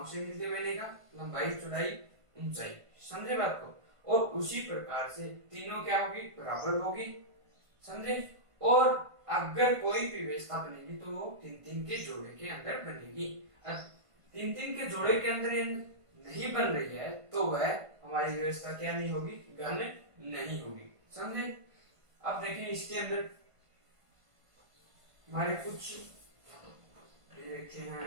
से मिलते बनेगा, लंबाई, चौड़ाई, ऊंचाई। समझे बात को। और उसी प्रकार से तीनों क्या होगी, बराबर होगी। समझे। और अगर कोई भी व्यवस्था बनेगी तो वो 3-3 के जोड़े के अंदर बनेगी। 3-3 के जोड़े के अंदर नहीं बन रही है तो वह हमारी व्यवस्था क्या नहीं होगी, घन नहीं होगी। समझे। अब देखें इसके अंदर हमारे कुछ रखे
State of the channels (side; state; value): left; late; 1.5 ms